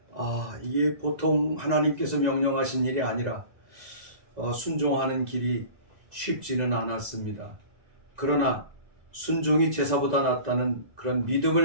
이게 보통 하나님께서 명령하신 일이 아니라 순종하는 길이 쉽지는 않았습니다. 그러나 순종이 제사보다 낫다는 그런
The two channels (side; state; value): left; late; 2.0 ms